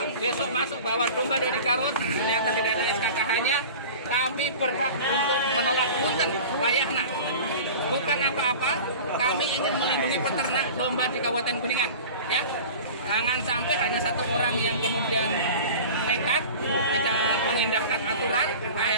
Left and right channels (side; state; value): both; inverted; correlation -0.37